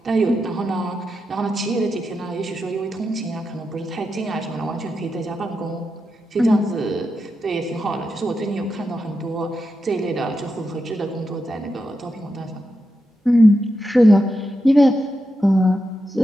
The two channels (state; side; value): normal; both; correlation 0.87